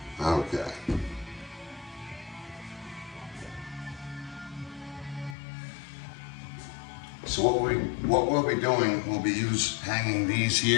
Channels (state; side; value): drops out; right; at 5.4 s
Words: So what we'll be doing, we'll be hanging these